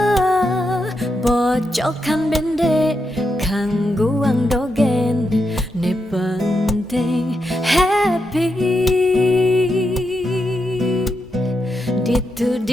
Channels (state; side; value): normal; both; correlation 0.85